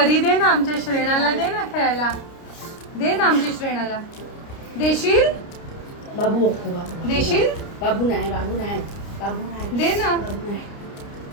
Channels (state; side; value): late; right; 29 ms